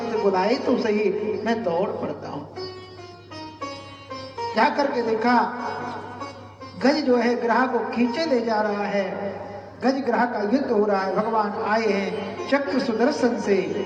बुलाए तो सही, मैं दौड़ पड़ता हूं। जा करके देखा, गज जो है ग्रह को खींचे ले जा रहा है, गज ग्रह का युद्ध हो रहा है। भगवान आए हैं चक्र सुदर्शन से,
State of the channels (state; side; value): identical; both; correlation 1.00